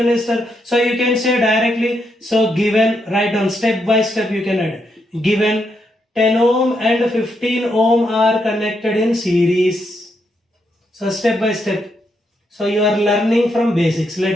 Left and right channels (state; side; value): normal; both; correlation 0.80